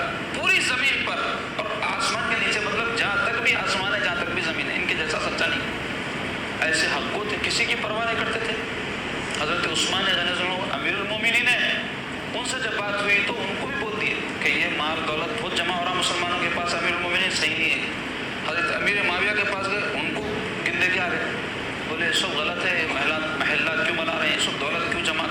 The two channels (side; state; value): both; identical; correlation 1.00